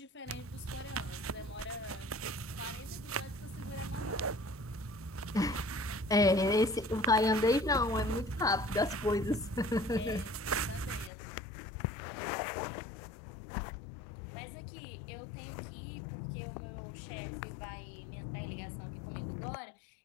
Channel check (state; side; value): drops out; right; at 11.1 s